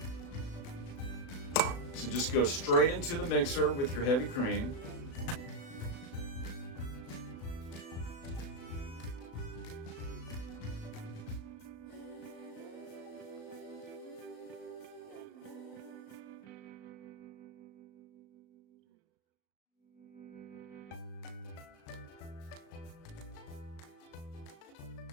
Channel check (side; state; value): right; late; 36 ms